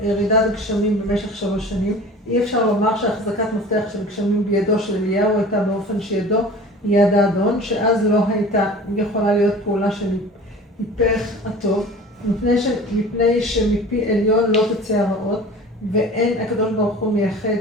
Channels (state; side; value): normal; both; correlation 0.40